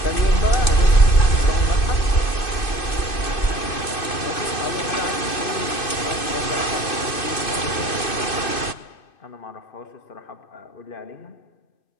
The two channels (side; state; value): right; late; 2.6 ms